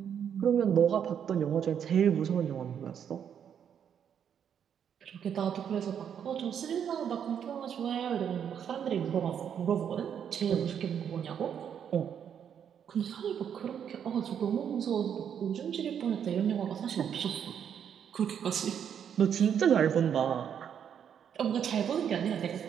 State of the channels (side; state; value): left; quieter; 8.4 dB